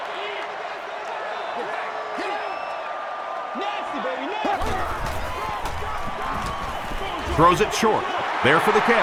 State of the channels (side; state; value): both; identical; correlation 1.00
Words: Throws it short. There for the